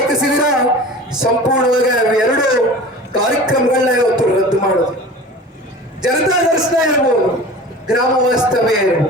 ಸಂಪೂರ್ಣವಾಗಿ 2 ಕಾರ್ಯಕ್ರಮಗಳನ್ನ ಇವತ್ತು ರದ್ದು ಮಾಡೋದು. ಜನತಾ ದರ್ಶನ ಇರ್ಬೋದು, ಗ್ರಾಮ ವಾಸ್ತವ್ಯ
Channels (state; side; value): normal; both; correlation 0.38